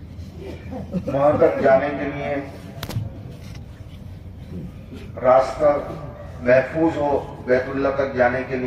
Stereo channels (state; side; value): identical; both; correlation 1.00